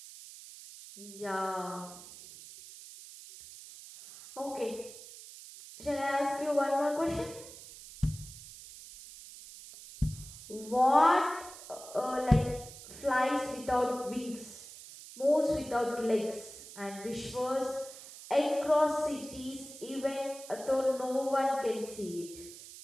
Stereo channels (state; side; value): noise; right; hiss, 15 dB below the sound